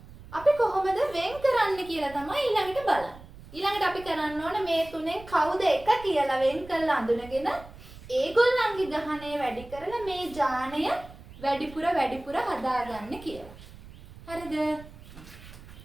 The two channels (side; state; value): right; noise; rumble, 18 dB below the sound